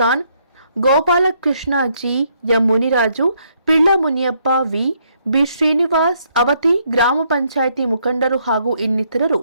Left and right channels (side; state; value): both; inverted; correlation -0.72